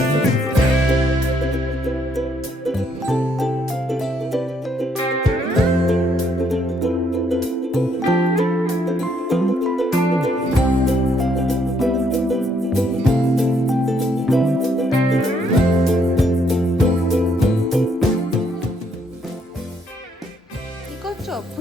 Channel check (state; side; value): normal; both; correlation 0.71